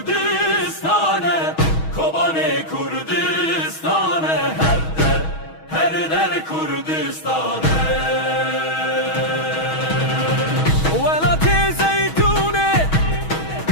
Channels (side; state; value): right; late; 6.3 ms